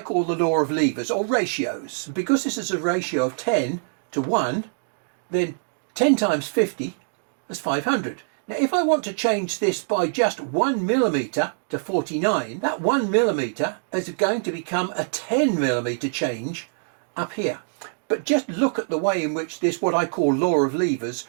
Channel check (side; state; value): left; silent; digital silence